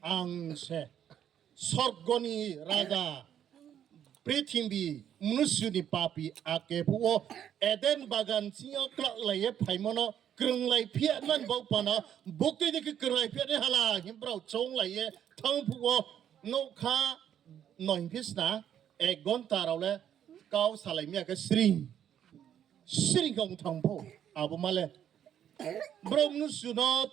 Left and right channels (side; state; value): left; quieter; 9.7 dB